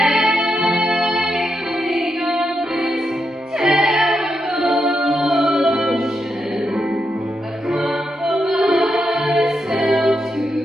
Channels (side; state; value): both; normal; correlation 0.84